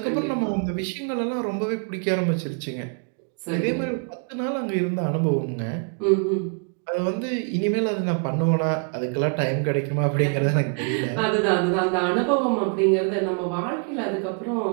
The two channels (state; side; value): quieter; left; 38.7 dB